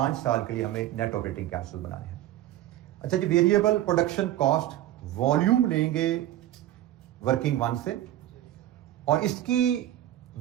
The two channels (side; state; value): left; quieter; 13.6 dB